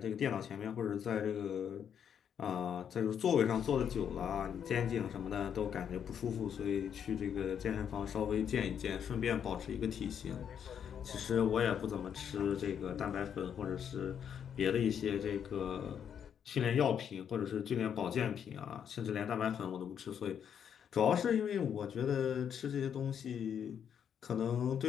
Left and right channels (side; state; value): right; quieter; 8.3 dB